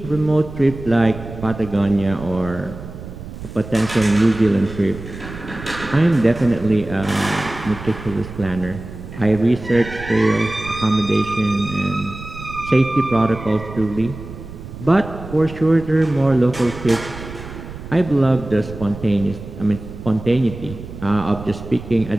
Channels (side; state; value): right; noise; rumble, 12 dB below the sound